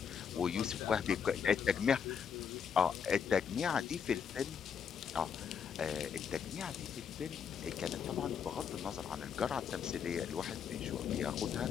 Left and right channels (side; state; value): right; quieter; 7.2 dB